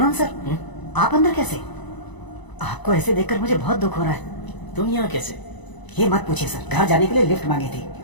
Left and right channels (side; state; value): right; late; 1.0 ms